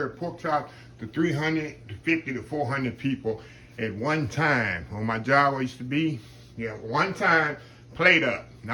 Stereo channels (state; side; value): identical; both; correlation 1.00